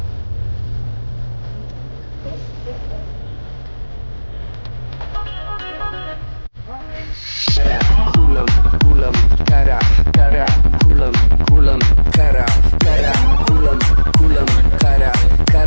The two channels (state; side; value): inverted; both; correlation -1.00